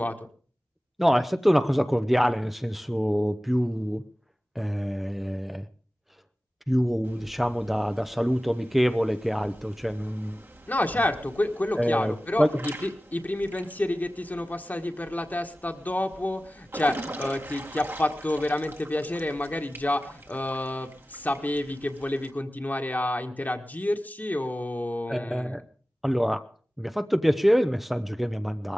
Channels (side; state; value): both; normal; correlation 0.96